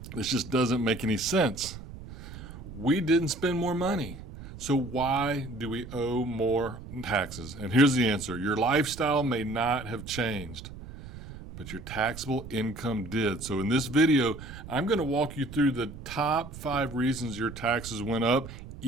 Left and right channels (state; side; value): noise; right; rumble, 13 dB below the sound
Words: this just doesn't make any sense. We didn't spend more money. So why do we owe more taxes? And here's the answer. Your lifestyle may not have changed, but your taxable income did. So in this video, I'm going to walk you through the top 5 reasons your taxes went up,